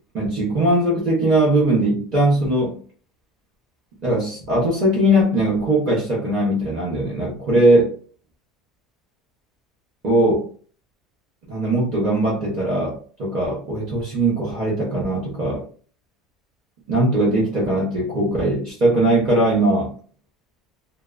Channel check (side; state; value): both; normal; correlation 0.43